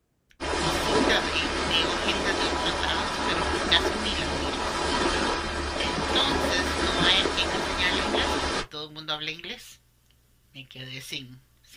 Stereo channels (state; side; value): identical; both; correlation 1.00